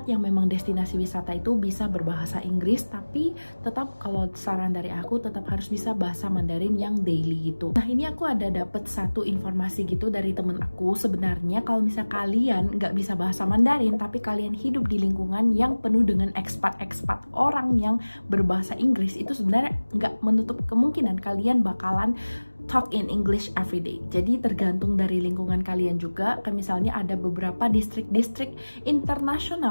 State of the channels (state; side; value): inverted; both; correlation -1.00